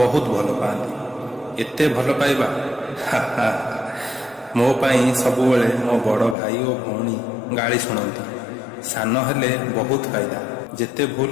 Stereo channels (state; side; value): drops out; right; at 6.4 s